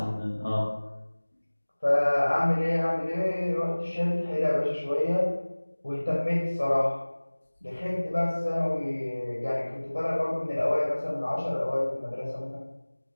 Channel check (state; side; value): inverted; both; correlation -1.00